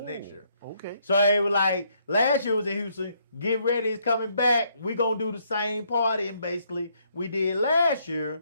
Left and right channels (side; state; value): both; inverted; correlation -0.71